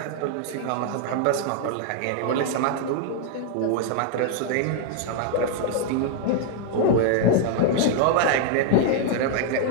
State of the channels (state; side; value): different; both; correlation 0.00